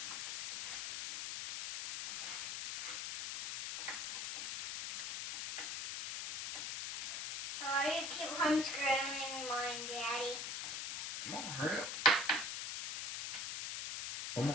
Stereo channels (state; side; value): noise; left; hiss, 3 dB below the sound